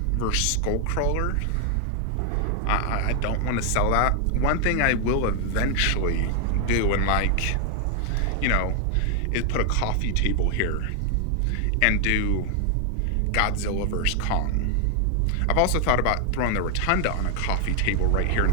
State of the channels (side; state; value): both; different; correlation 0.00